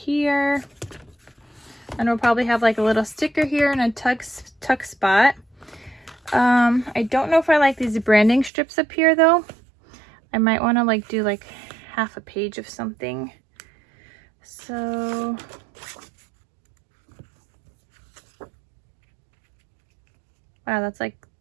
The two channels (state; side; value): drops out; left; at 8.5 s